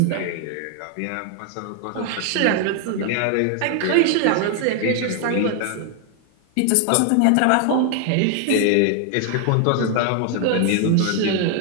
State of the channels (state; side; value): different; both; correlation 0.00